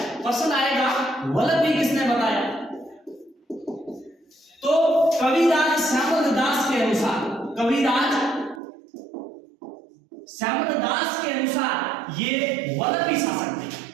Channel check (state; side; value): drops out; left; at 8.6 s